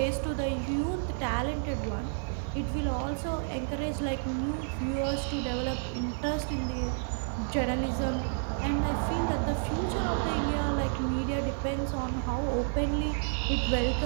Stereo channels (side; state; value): left; silent; 58 dB below the other